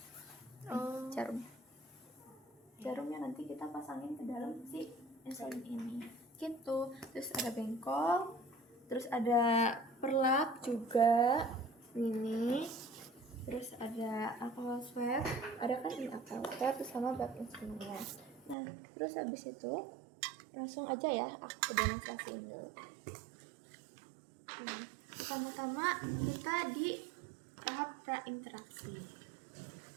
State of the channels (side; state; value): left; drops out; at 18.6 s